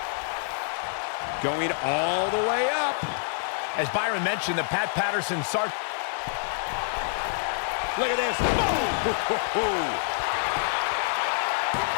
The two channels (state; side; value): silent; right; digital silence